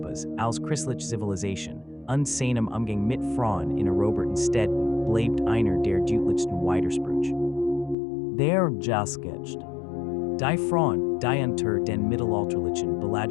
als christliche Zivilisation und seinem Umgang mit Frauen in eroberten Städten bleibt einer der deutlichsten Widersprüche. Der Lösegeld. Die Frauen, die unter den mittelalterlichen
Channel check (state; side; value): drops out; right; at 8.0 s